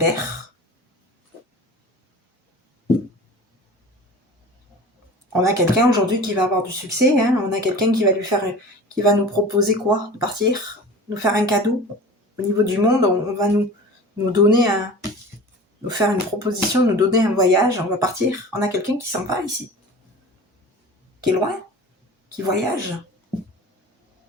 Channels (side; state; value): both; normal; correlation 0.38